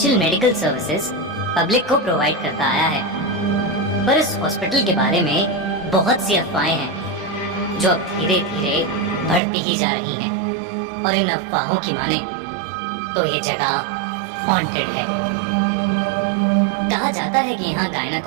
medical services public को प्रोवाइड करता आया है, पर इस हॉस्पिटल के बारे में बहुत सी अफवाहें हैं जो अब धीरे धीरे बढ़ती ही जा रही हैं, और इन अफवाहों की माने तो ये जगह हॉन्टेड है। कहा जाता है कि यहाँ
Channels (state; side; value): drops out; left; at 9.4 s